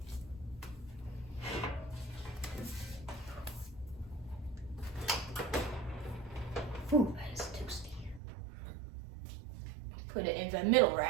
Ooh, that is toasty. Put it in the middle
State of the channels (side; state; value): left; drops out; at 8.2 s